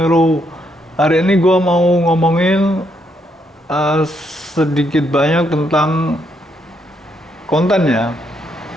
Hari ini gua mau ngomongin sedikit banyak tentang konten ya.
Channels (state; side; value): normal; both; correlation 0.76